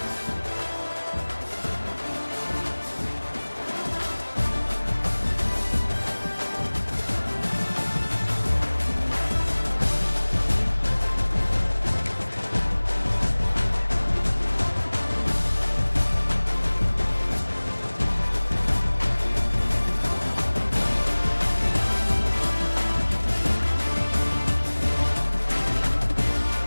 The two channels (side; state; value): both; inverted; correlation -1.00